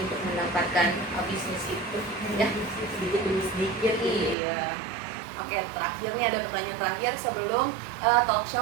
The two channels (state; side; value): drops out; left; at 4.4 s